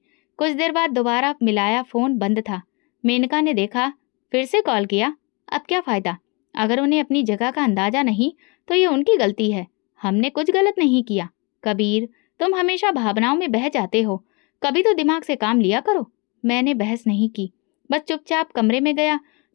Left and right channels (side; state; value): right; quieter; 29.7 dB